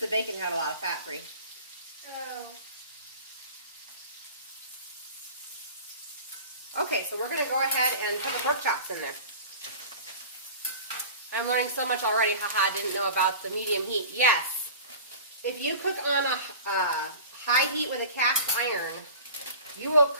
the bacon had a lot of fat, Brie. Oh. Okay, so we're going to go ahead and put the pork chops in there. I'm learning so much already. Haha, I didn't know about the medium heat. Yes, if you cook on a high heat with a cast iron, you will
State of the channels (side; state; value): both; inverted; correlation -0.39